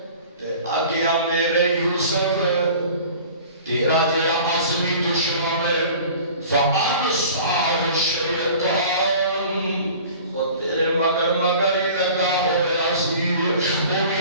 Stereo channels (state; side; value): inverted; both; correlation -0.44